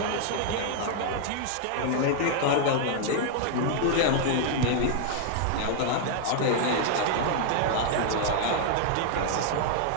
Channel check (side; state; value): both; different; correlation 0.00